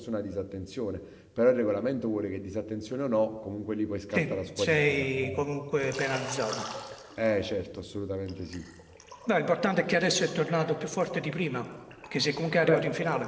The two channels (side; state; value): both; identical; correlation 1.00